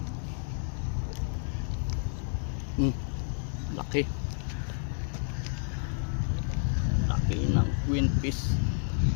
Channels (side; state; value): right; silent; digital silence